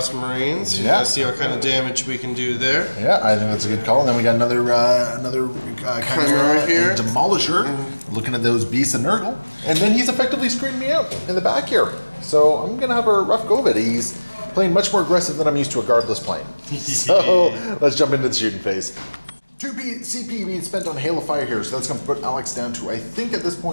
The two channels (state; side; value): inverted; both; correlation -1.00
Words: Marines. Yeah. See what kind of damage we can do there. Yeah, I think that's a good call. And then we got another Chimera here. and Demolisher, looking at those beasts and Nurgle. And then he's effectively screening me out in the back here. So I'm going to have a rough go of it. He's playing much more aggressive than I'm used to a guardless playing. So let's jump into the shooting phase. 2 CP being spent on Hail of Fire here, so that's going to put Alex down to, I think at this